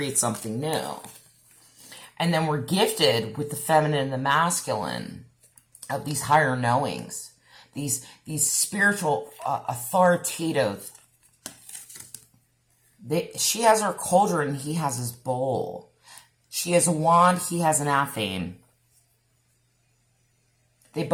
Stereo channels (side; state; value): both; identical; correlation 1.00